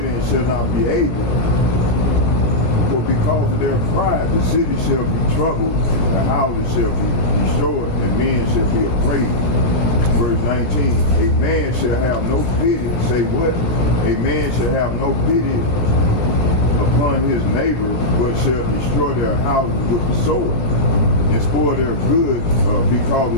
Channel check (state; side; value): late; right; 18 ms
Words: and shall not be able. For because of their pride, the city shall be troubled, the houses shall be destroyed, and men shall be afraid. Verse 19, a man shall have no pity. Say what? A man shall have no pity upon his neighbor, but shall destroy their houses with the sword, and spoil their goods because